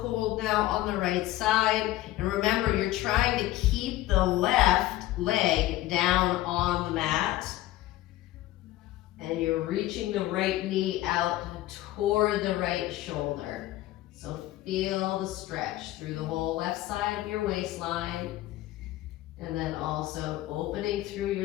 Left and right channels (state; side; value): quieter; right; 15.7 dB